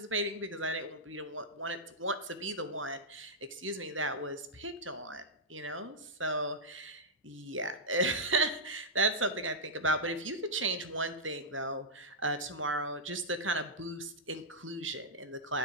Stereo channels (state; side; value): normal; both; correlation -0.09